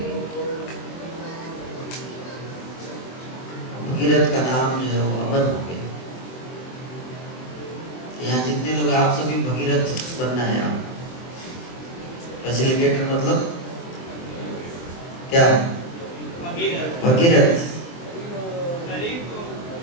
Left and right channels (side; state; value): right; late; 23 ms